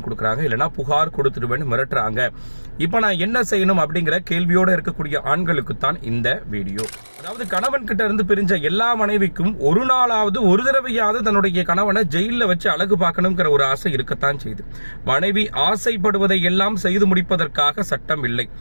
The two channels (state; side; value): inverted; both; correlation -1.00